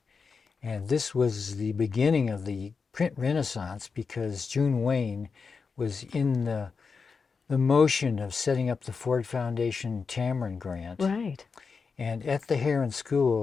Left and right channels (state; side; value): quieter; right; 5.1 dB